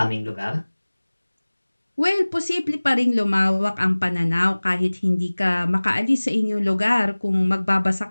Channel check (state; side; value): inverted; both; correlation -1.00